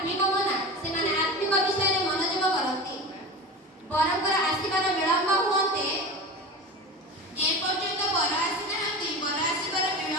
ମନା ସେମାନେ ଆତ୍ମିକ ବିଷୟରେ ମନୋଯୋଗ କରନ୍ତି। ବରଙ୍କର ଆସିବାର ବିଳମ୍ବ ହୁଅନ୍ତେ ଏପର୍ଯ୍ୟନ୍ତ ବର ଆସିନାହାନ୍ତି, ବର ଆସିବାର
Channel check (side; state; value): both; normal; correlation 0.30